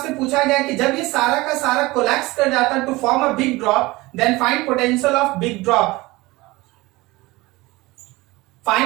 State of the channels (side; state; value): left; quieter; 21.1 dB